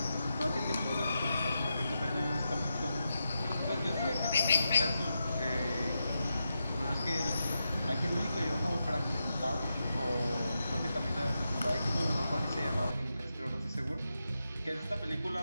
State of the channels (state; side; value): inverted; both; correlation -0.87